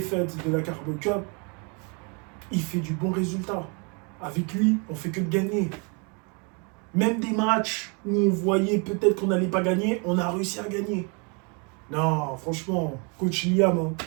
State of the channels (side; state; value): left; quieter; 34.1 dB